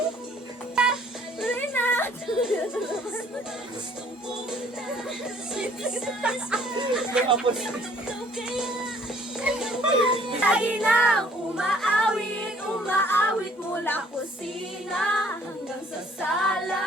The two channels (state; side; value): normal; both; correlation 0.59